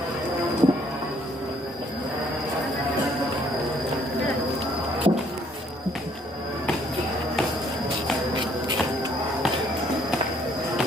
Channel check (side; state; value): both; normal; correlation 0.64